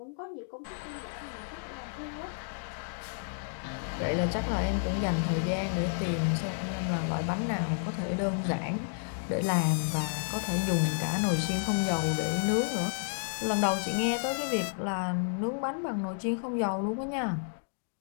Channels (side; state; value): right; silent; digital silence